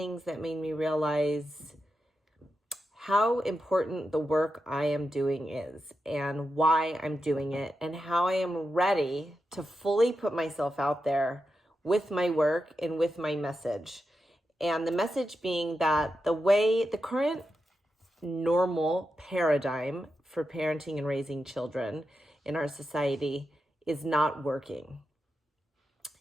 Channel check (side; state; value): both; normal; correlation 0.88